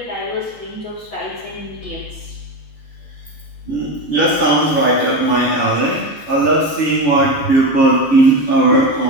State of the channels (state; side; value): late; right; 14 ms